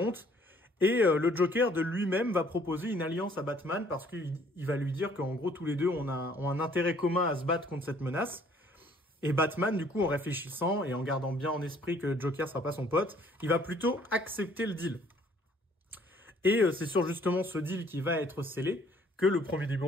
et le Joker de lui-même va proposer une alliance à Batman parce qu'il va lui dire qu'en gros tous les deux ont un intérêt commun à se battre contre cette menace. Et Batman, du coup, en réfléchissant et en gardant bien en esprit que Joker sera pas son pote, il va plutôt accepter le deal. Et c'est sur justement ce deal qui va être scellé que le premier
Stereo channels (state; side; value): normal; both; correlation 0.60